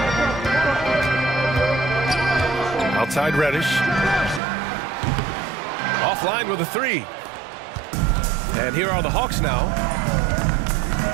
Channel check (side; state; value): left; drops out; at 4.4 s